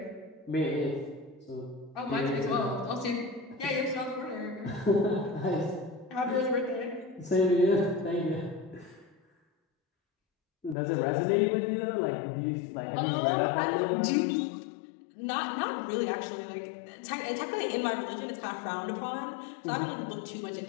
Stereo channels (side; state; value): right; drops out; at 10.8 s